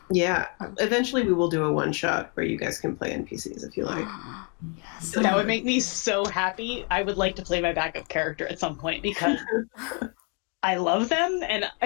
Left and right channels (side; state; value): right; quieter; 36.2 dB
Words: Yeah, eventually we will do a one-shot where you guys can play NPCs if you like. Yes. That would make me so happy. I would like to play my backup character at some point because I love them. And